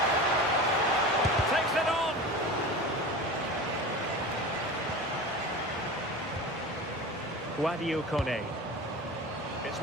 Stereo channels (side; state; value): both; normal; correlation 0.32